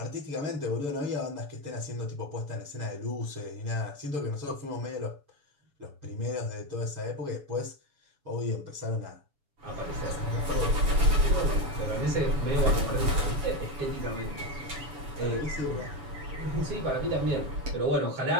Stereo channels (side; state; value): left; late; 7.0 ms